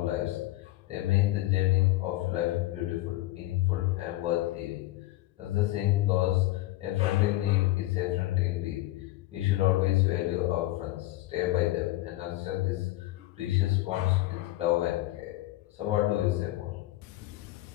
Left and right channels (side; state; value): right; quieter; 17.4 dB